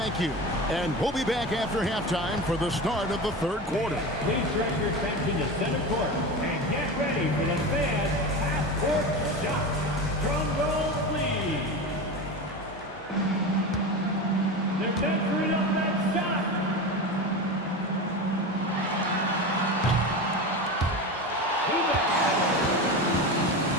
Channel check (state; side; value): normal; both; correlation 0.25